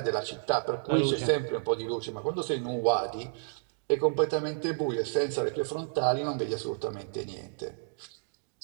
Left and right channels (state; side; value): silent; left; digital silence